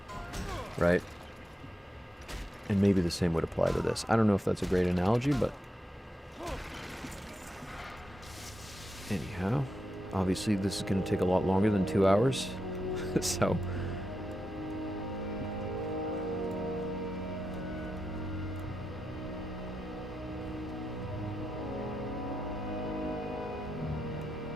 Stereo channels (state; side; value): normal; both; correlation 0.86